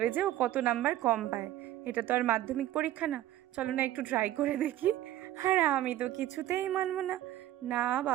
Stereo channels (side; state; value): left; quieter; 13.8 dB